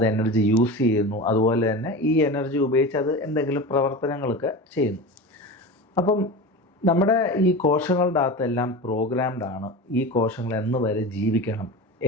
എനർജി യൂസ് ചെയ്യുന്നു. അതുപോലെ തന്നെ ഈ എനർജി ഉപയോഗിച്ച് അത് എന്തെങ്കിലും പ്രവർത്തനങ്ങളൊക്കെ ചെയ്യുന്നു. അപ്പം നമ്മുടെ ഈ കോശങ്ങളുടെ അകത്തെല്ലാം പ്രോഗ്രാംഡ് ആണ്. ഈ കോശങ്ങൾ എന്ന് വരെ ജീവിക്കണം,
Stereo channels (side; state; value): both; normal; correlation 0.29